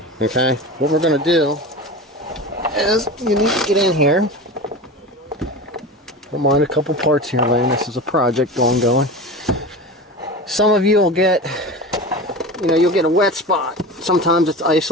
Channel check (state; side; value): normal; both; correlation 0.30